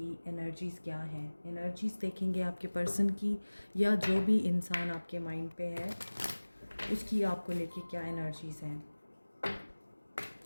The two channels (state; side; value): inverted; both; correlation -1.00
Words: एनर्जीज़ क्या हैं। एनर्जीज़ देखेंगे आपके पर्सन की, या जो भी इंसान आपके माइंड पे है उसकी आपको लेके क्या एनर्जीज़ हैं।